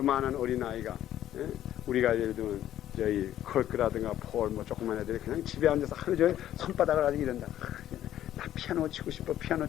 어린아이가 우리가 예를 들면 저희 컬크라든가 폴 뭐 조그만 애들이 그냥 집에 앉아서 하루 종일 손바닥을 가지고 이런다. 나 피아노 치고 싶어. 피아노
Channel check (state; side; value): quieter; right; 12.1 dB